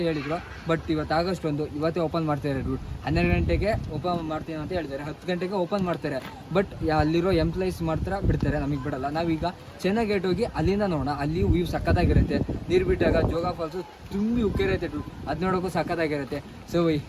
ಹೇಳಿದ್ರು, ಬಟ್ ಇವತ್ತು ಆಗಸ್ಟ್ 1 ಇವತ್ತೇ ಓಪನ್ ಮಾಡ್ತಾರೆ ಡುಡ್. 12 ಗಂಟೆಗೆ ಓಪನ್ ಮಾಡ್ತೀವಿ ಅಂತ ಹೇಳ್ತಾರೆ, 10 ಗಂಟೆಗೆ ಓಪನ್ ಮಾಡ್ತಾರೆ. ಬಟ್ ಅಲ್ಲಿರೋ ಎಂಪ್ಲಾಯೀಸ್ ಮಾತ್ರ ಬಿಡ್ತಾರೆ, ನಮಗೆ ಬಿಡಲ್ಲ. ನಾವೀಗ ಚೆನ್ನೈ ಗೇಟ್ ಹೋಗಿ ಅಲ್ಲಿಂದ ನೋಡೋಣ. ಅಲ್ಲಿ ವ್ಯೂ ಸಕ್ಕತ್ತಾಗಿರುತ್ತೆ. ನೀರು ಬಿಟ್ಟಾಗ ಜೋಗ ಫಾಲ್ಸು ತುಂಬಿ ಉಕ್ಕಿರುತ್ತೆ ಡುಡ್, ಅದು ನೋಡೋಕ್ಕೂ ಸಕ್ಕತ್ತಾಗಿರುತ್ತೆ. ಸೊ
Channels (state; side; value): identical; both; correlation 1.00